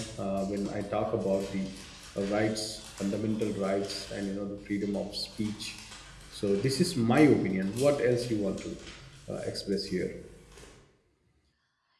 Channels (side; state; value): both; identical; correlation 1.00